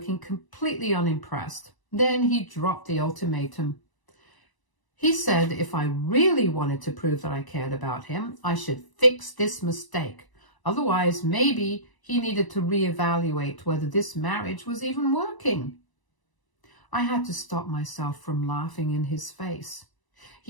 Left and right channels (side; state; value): right; late; 1.0 ms